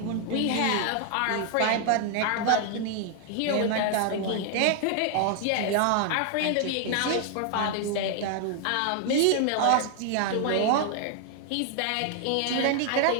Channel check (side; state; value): both; different; correlation 0.00